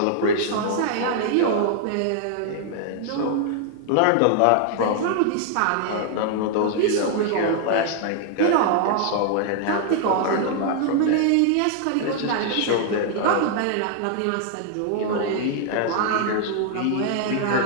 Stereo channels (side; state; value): both; different; correlation 0.00